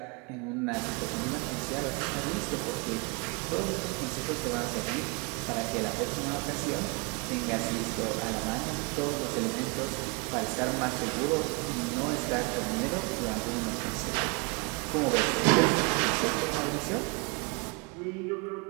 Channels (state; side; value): quieter; left; 30.7 dB